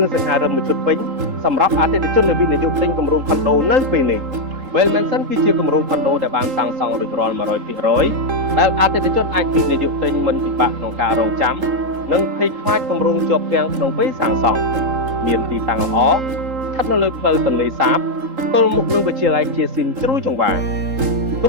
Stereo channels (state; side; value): late; left; 3.8 ms